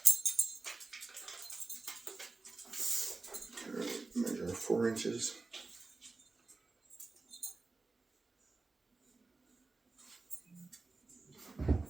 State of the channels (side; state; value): left; quieter; 3.7 dB